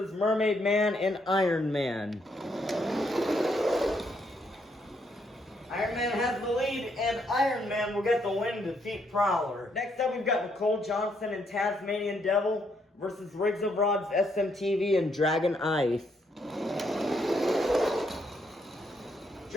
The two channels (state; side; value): normal; both; correlation 0.74